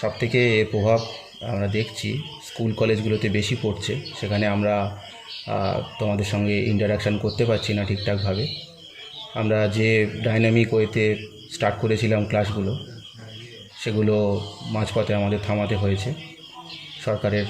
সবথেকে এর প্রভাব আমরা দেখছি স্কুল কলেজগুলোতে বেশি পড়ছে। সেখানে আমরা তোমাদের সঙ্গে ইন্টারাকশান করতে পারছি না ঠিকঠাকভাবে। আমরা যে ডাইনামিক ওয়েতে স্টার্ট করেছিলাম ক্লাসগুলো, সেগুলো মাঝপথে আমাদের থামাতে হয়েছে। সরকারের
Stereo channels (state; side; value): identical; both; correlation 1.00